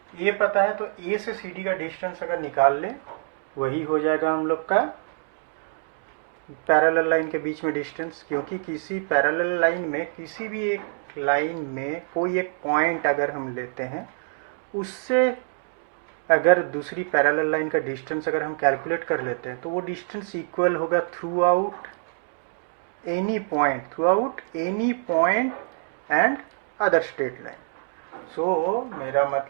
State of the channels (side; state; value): left; silent; digital silence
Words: ये पता है, तो A से CD का डिस्टेंस अगर निकाल ले वही हो जाएगा हम लोग का पैरेलल लाइन के बीच में डिस्टेंस। क्योंकि किसी पैरेलल लाइन में किसी भी एक लाइन में कोई एक पॉइंट अगर हम लेते हैं उससे अगर दूसरी पैरेलल लाइन का डिस्टेंस अगर हम कैलकुलेट कर लेते हैं तो वो डिस्टेंस इक्वल होगा throughout any point and other straight line. So मेरा